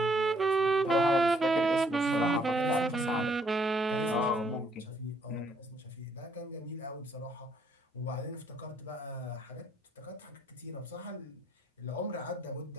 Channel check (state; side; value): normal; both; correlation 0.67